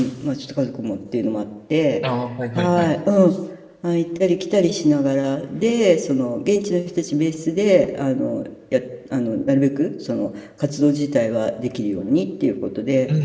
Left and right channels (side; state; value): both; identical; correlation 1.00